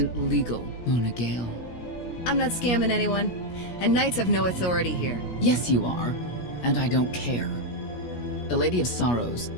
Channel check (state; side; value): late; right; 17 ms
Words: legal, Mona Gale. I'm not scamming anyone. And Knights have no authority here. Yes, you are. And I don't care. The Lady of Sorrows.